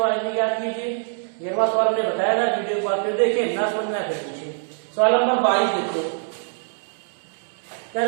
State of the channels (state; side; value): silent; left; 63 dB below the other